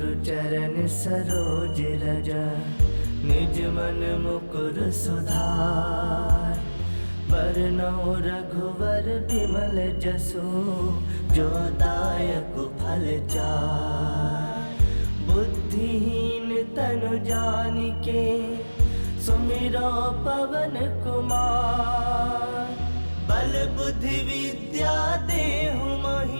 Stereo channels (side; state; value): both; inverted; correlation -1.00